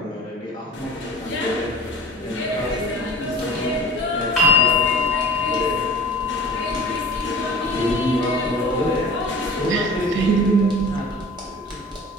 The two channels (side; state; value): both; normal; correlation 0.42